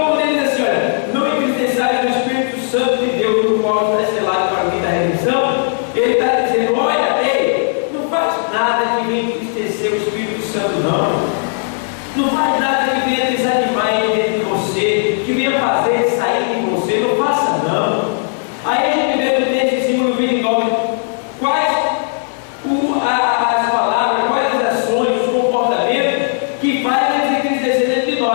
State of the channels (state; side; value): silent; right; 60 dB below the other